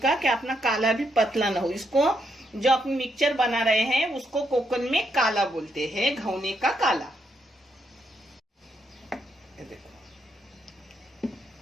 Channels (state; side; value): normal; both; correlation 0.78